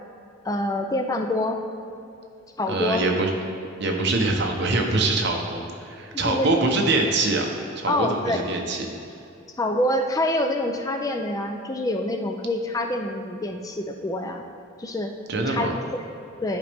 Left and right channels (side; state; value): both; normal; correlation 0.37